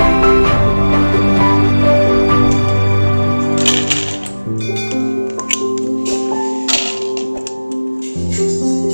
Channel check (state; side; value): inverted; both; correlation -1.00